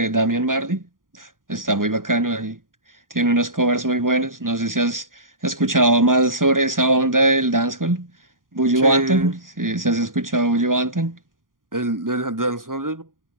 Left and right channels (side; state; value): left; late; 0.90 ms